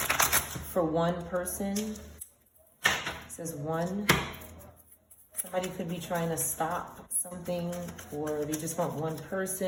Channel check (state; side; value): identical; both; correlation 1.00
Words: For one person, it says one. Somebody could be trying to stop something, or they just want one